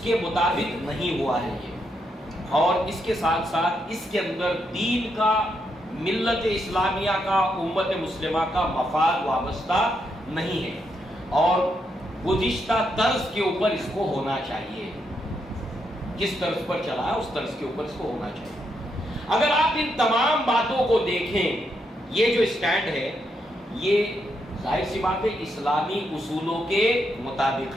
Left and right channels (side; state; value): both; normal; correlation 0.80